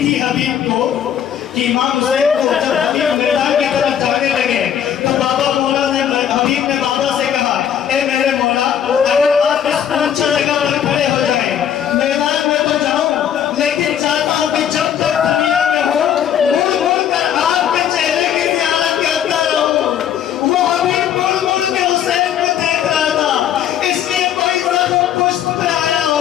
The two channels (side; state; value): right; quieter; 9.4 dB